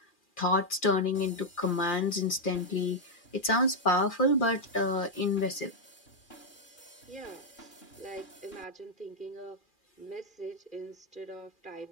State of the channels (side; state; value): right; late; 2.4 ms